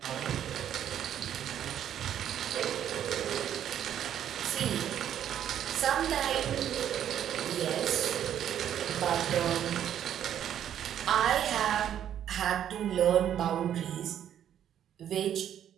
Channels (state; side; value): quieter; left; 10.2 dB